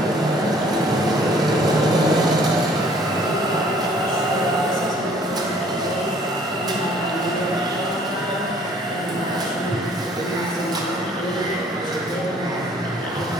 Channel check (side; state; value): both; normal; correlation 0.57